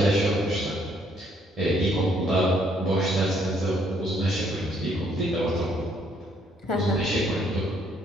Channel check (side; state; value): both; normal; correlation 0.68